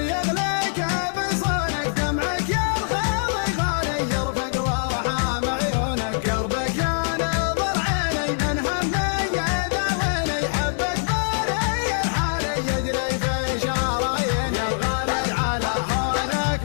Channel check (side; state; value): right; silent; digital silence